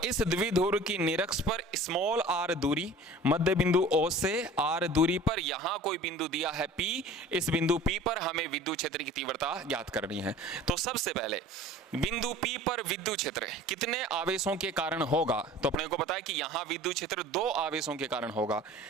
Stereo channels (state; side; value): normal; both; correlation 0.44